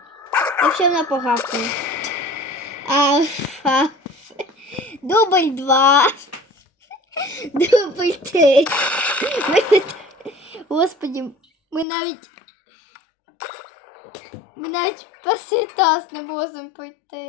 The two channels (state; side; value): drops out; right; at 11.9 s